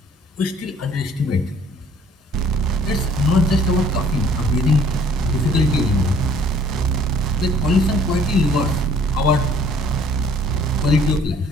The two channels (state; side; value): normal; both; correlation 0.57